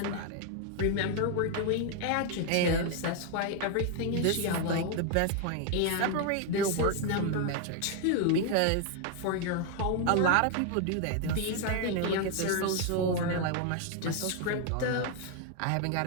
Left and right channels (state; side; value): different; both; correlation 0.00